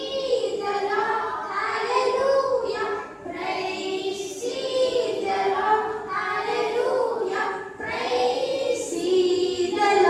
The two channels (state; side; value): identical; both; correlation 1.00